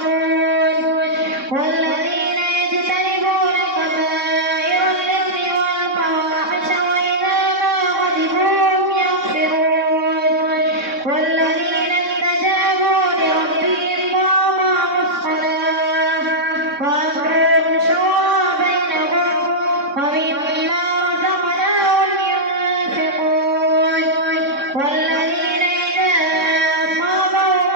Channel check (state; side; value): late; left; 3.6 ms